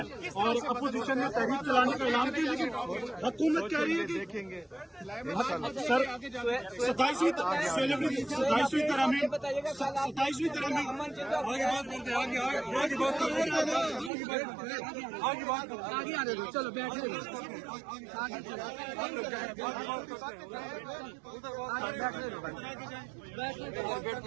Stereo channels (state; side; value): drops out; left; at 14.1 s